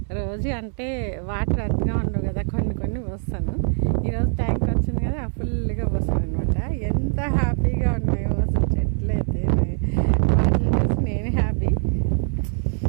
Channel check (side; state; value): left; silent; 56 dB below the other